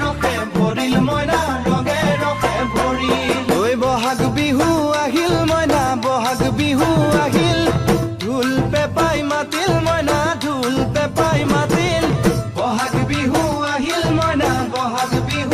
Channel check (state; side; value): identical; both; correlation 1.00